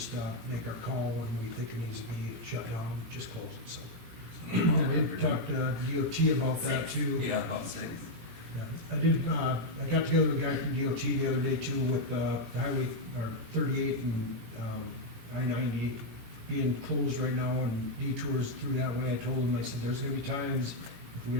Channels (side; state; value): left; late; 18 ms